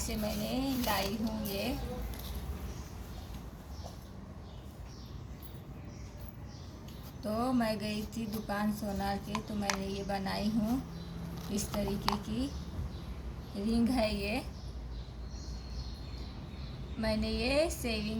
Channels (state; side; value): identical; both; correlation 1.00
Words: मैंने लाई हूँ ये। तो मैं गई थी दुकान सोनार के, तो मैंने ये बनाई हूँ। इस तरीके की रिंग है ये। मैंने ये